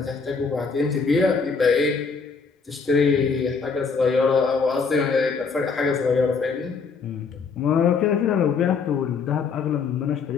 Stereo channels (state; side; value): quieter; right; 5.1 dB